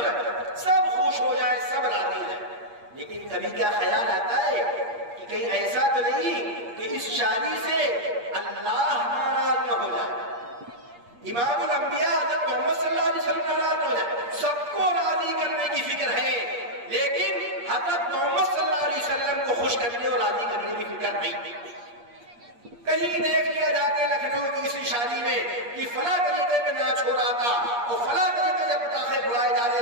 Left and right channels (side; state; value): left; late; 8.5 ms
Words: رہا ہے؟ سب خوش ہو جائے، سب راضی ہو جائے. لیکن کبھی کیا خیال آتا ہے کہ کہیں ایسا تو نہیں کہ اس شادی سے اللہ ناراض نہ ہو جائے، امام الانبیاء حضرت محمد صلی اللہ علیہ وسلم ناراض ہو جائے. سب کو راضی کرنے کی فکر ہے، لیکن حضرت محمد صلی اللہ علیہ وسلم کو خوش کرنے اور راضی کرنے کی فکر نہیں. کہیں دیکھ لیا جا کے لکھنؤ کی کسی شادی میں کہ فلاں طریقے میں ناچ ہو رہا تھا، اور فلاں طریقے سے پٹاخے اڑائے جا رہے